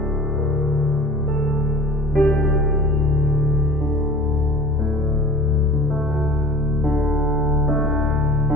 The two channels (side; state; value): both; normal; correlation 0.42